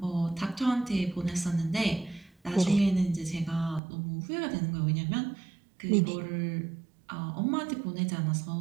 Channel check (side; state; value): left; drops out; at 3.8 s